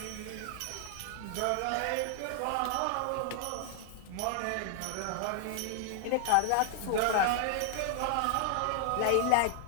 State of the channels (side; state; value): both; different; correlation 0.00